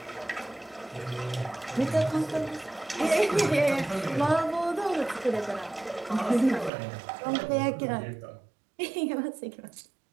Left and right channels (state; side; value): drops out; left; at 6.7 s